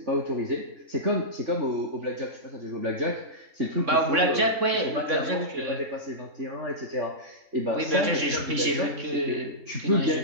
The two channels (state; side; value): late; left; 3.6 ms